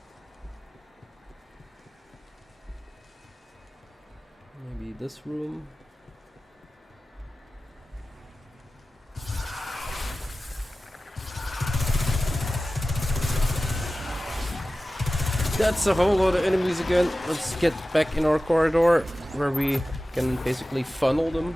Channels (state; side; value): normal; both; correlation 0.95